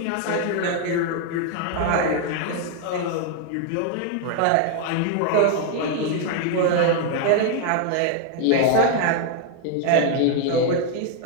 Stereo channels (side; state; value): both; different; correlation 0.00